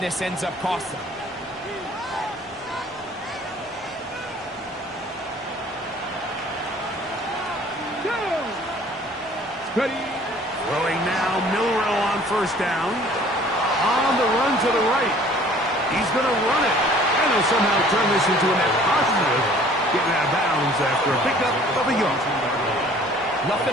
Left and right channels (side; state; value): both; normal; correlation 0.53